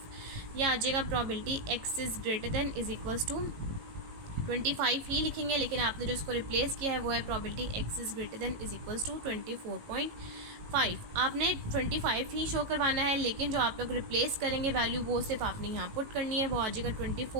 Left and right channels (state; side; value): late; left; 18 ms